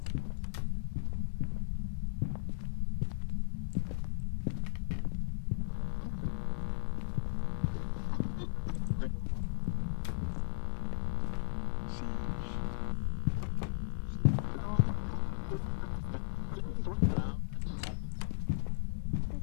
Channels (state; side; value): silent; right; digital silence